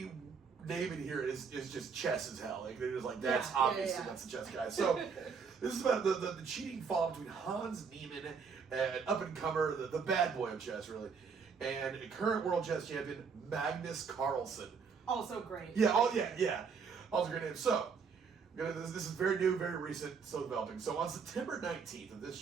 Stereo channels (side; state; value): left; quieter; 5.8 dB